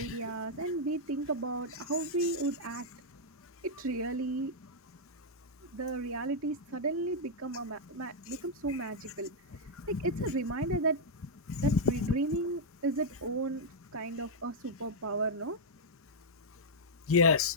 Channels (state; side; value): normal; both; correlation -0.06